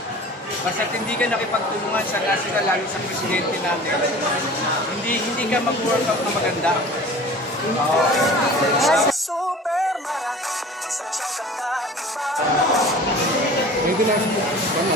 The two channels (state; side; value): normal; both; correlation 0.42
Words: basta hindi ka nakipagtulungan sa national, lalo sa presidente natin, hindi ka mag-work out na maganda. Maybe namin po.